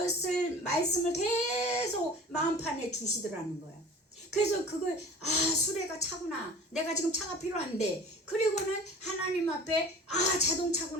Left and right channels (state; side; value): normal; both; correlation 0.42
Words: 말씀을 계속 마음판에 주시더라는 거예요. 그래서 그걸 수레가 차구나 내가 지금 차가 필요한데 그리고는 하나님 앞에